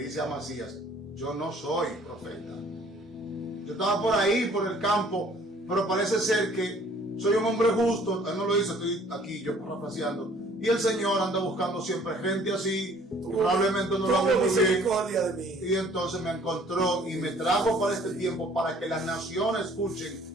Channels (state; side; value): normal; both; correlation 0.56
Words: a Amasías: yo no soy profeta. Yo estaba por ahí, por el campo, pero parece ser que soy un hombre justo. Él no lo dice, estoy aquí yo parafraseando. Y el Señor anda buscando siempre gente así. Probablemente no lo hago misericordia de mí. Y entonces me encontró y me trajo para este tiempo para que las naciones escuchen